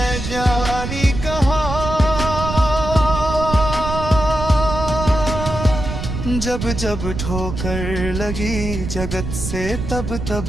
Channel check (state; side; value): noise; right; rumble, 5 dB below the sound